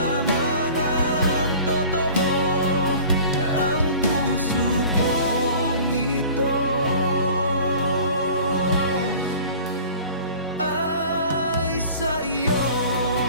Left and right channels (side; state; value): both; inverted; correlation -0.44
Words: ang totoo. Ang puso kong ito ay sa iyo.